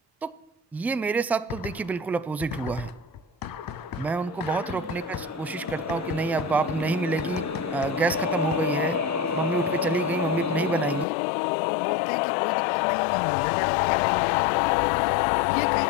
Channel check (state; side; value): drops out; right; at 11.1 s